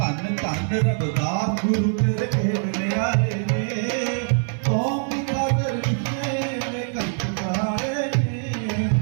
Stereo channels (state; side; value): silent; left; 63 dB below the other